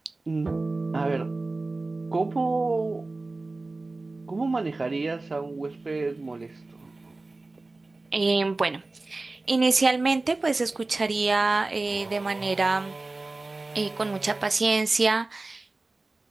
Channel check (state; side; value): quieter; left; 3.2 dB